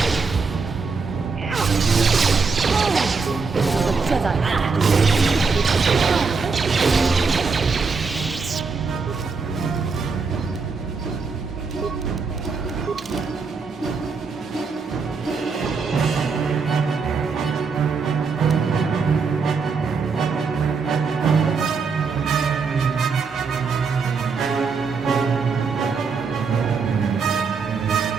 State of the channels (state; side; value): quieter; left; 4.9 dB